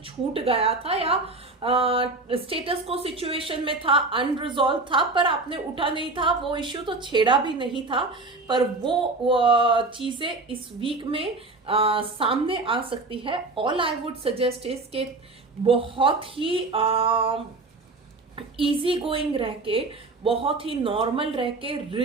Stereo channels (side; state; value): left; quieter; 3.4 dB